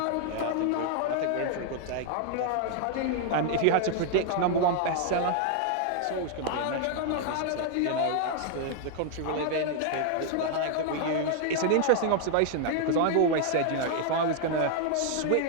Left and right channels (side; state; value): both; different; correlation 0.00